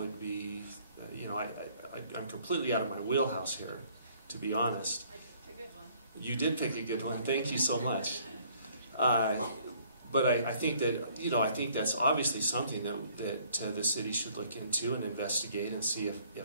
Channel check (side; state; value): both; inverted; correlation -0.61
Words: be, I'm completely out of my wheelhouse here, to be honest. I picked a good one. You did pick a good one. Thank you so much. But I think that, I think that's obviously something that the city should look into and investigate and see